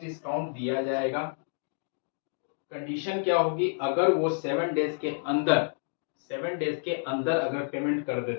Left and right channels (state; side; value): silent; right; digital silence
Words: दिया जाएगा, कंडीशन क्या होगी, अगर वो 7 डेज के अंदर अगर पेमेंट कर